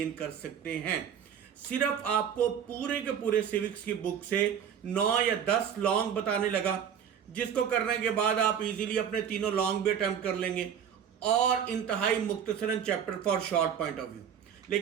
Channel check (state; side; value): quieter; left; 8.3 dB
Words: कर सकते हैं। सिर्फ आपको पूरे के पूरे सिविक्स की बुक से 9 या 10 लॉन्ग बताने लगा, जिसको करने के बाद आप इजीली अपने तीनों लॉन्ग भी अटेम्प्ट कर लेंगे और इंतहाई मुख्तसरन chapter four short point of view.